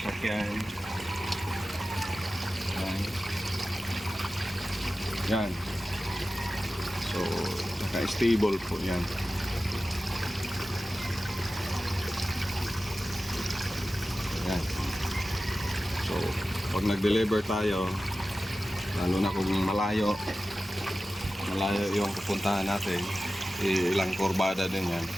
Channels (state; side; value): normal; both; correlation 0.94